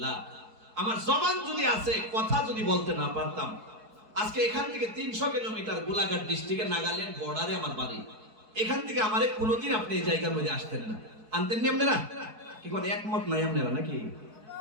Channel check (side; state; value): left; late; 4.6 ms